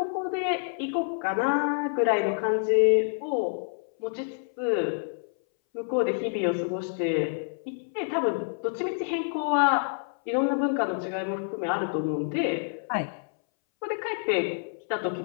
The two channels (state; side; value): silent; right; 60 dB below the other